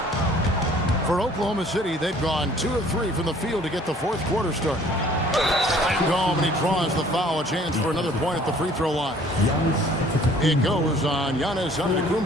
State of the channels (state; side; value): normal; both; correlation 0.55